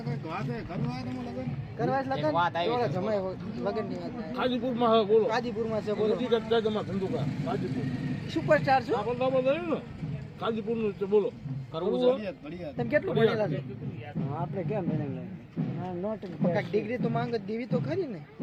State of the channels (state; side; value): identical; both; correlation 1.00